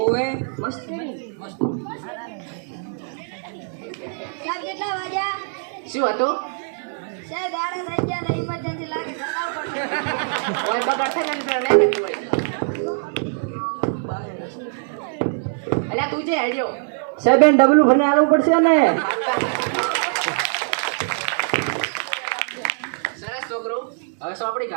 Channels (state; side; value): silent; left; digital silence